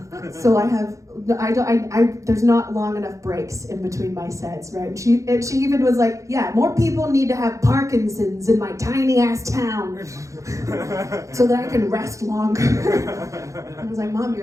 So there's not long enough breaks in between my sets, right? And she even was like, yeah, more people need to have Parkinson's in my tiny ass town so that I can rest longer. I was like, Mom,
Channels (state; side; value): late; left; 0.15 ms